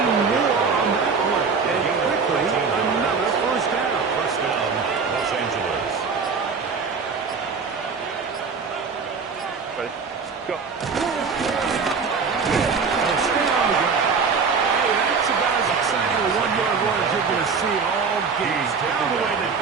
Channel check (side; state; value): left; quieter; 5.3 dB